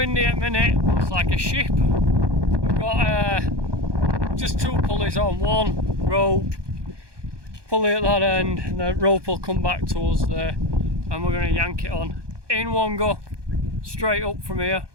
at the minute, looks like a ship. We've got just two pulleys on, one rope, pulley at that end, and the rope will come back to us there, and we're going to yank it on in one go, straight up from here.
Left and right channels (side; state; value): left; late; 1.2 ms